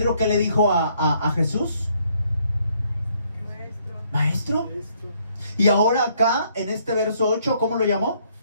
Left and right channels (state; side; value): inverted; both; correlation -0.67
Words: ¿qué le dijo a Jesús? Maestro. Y ahora acá, en este verso 8, ¿cómo lo llamó?